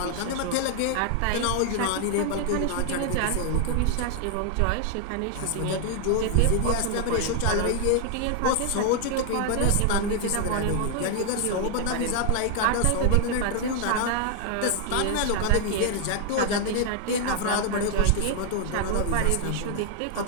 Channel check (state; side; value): different; both; correlation 0.00